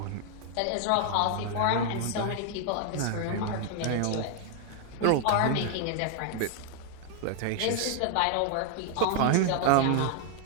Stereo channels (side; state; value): both; different; correlation 0.00